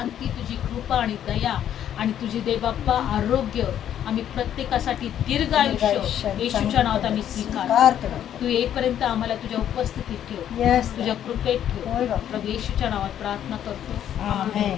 तुझी कृपा आणि दया आणि तुझी देवबाप्पा आरोग्य आम्ही प्रत्येकासाठी दीर्घ आयुष्य येशूच्या नावात आम्ही स्वीकारतो. तू येईपर्यंत आम्हाला तुझ्या उपस्थितीत ठेव, येस तुझ्या कृपेत होय ठेव. बाप्पा. प्रभू येशूच्या नावात प्रार्थना करतो. आमेन.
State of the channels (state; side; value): quieter; right; 10.3 dB